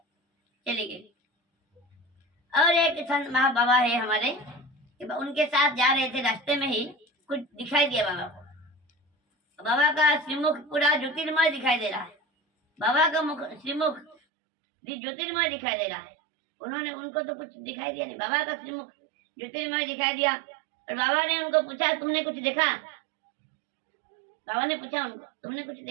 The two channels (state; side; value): drops out; left; at 14.2 s